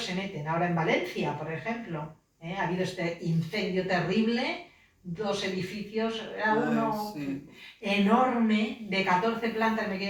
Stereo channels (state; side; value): identical; both; correlation 1.00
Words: se meten. Ahora en Valencia, por ejemplo, ha habido este incendio terrible, 2 edificios, era uno enorme, de 14 plantas, me